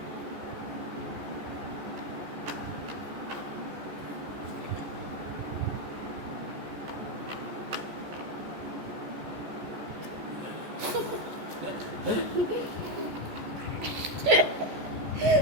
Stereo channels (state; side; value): late; left; 14 ms